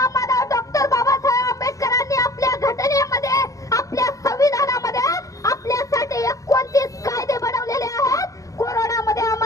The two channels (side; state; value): right; late; 0.16 ms